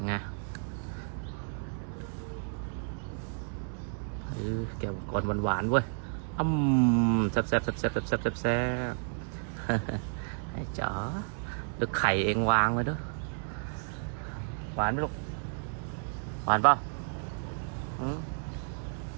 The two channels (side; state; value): left; silent; 57 dB below the other